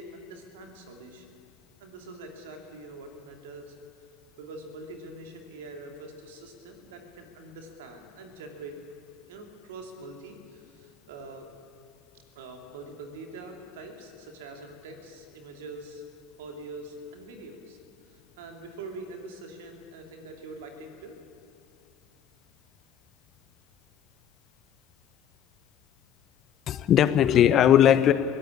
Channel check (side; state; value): right; quieter; 9.1 dB